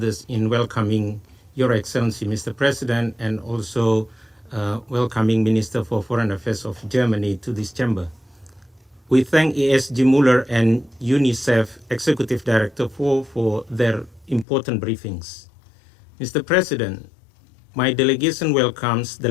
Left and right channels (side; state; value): right; drops out; at 14.5 s